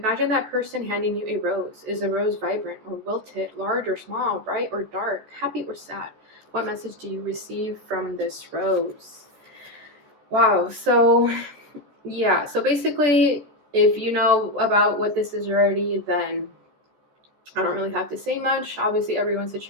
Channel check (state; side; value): late; left; 14 ms